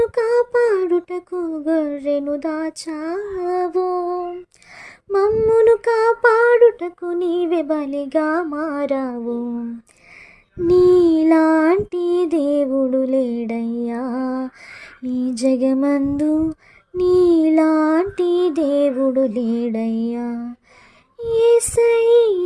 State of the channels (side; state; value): both; identical; correlation 1.00